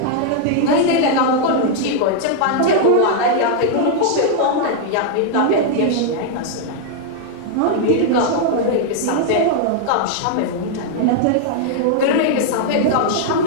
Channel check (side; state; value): both; different; correlation -0.01